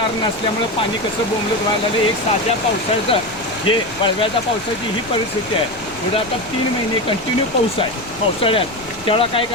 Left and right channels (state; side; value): noise; left; rumble, 20 dB below the sound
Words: नसल्यामुळे पाणी कसं बोंबलत व्हायला लागलं. एक साध्या पावसाळ्याचं हे वळव्याच्या पावसाची ही परिस्थिती आहे. पुढे आता 3 महिने कंटिन्यू पाऊस आहे पावसाळ्यात. तेवढा काय